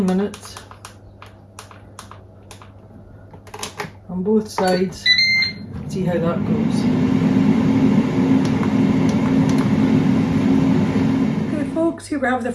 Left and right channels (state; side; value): identical; both; correlation 1.00